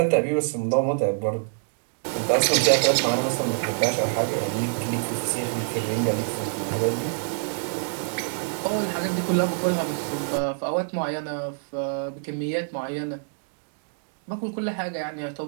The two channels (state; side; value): silent; left; digital silence